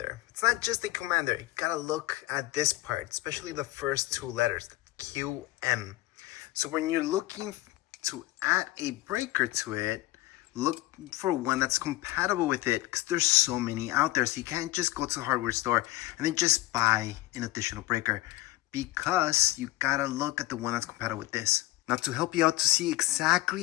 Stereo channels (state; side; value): quieter; right; 17.8 dB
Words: It's not just a commander, you gotta look at this part, especially the first two letters, QM. So when you're looking to add a breaker to it, look for one that's compatible with it because there's so many out there. So you can't just go to the hardware store and then just buy an additional breaker because you gotta look at the one that's compatible with this. Now to help you out to see